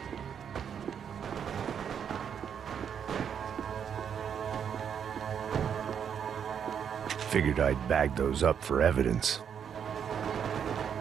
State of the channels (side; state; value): left; quieter; 7.9 dB